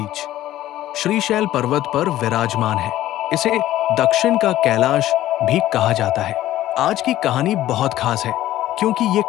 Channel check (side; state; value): right; quieter; 14.1 dB